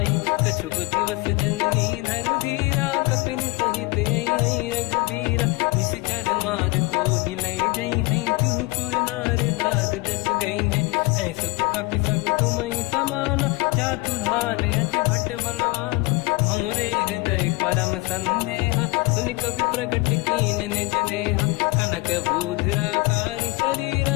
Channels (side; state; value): right; quieter; 23.4 dB